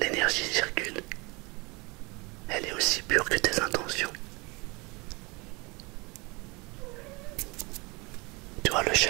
circule. Elle est aussi pure que tes intentions. Tu vois, le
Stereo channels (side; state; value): left; quieter; 26.6 dB